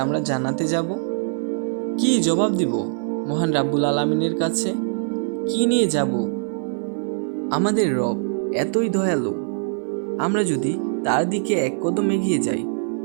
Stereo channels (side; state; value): left; silent; 64 dB below the other